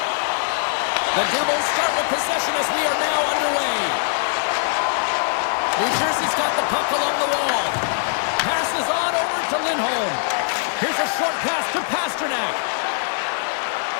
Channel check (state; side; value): silent; right; digital silence